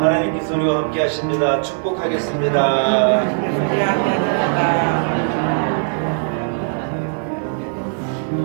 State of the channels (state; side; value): silent; left; digital silence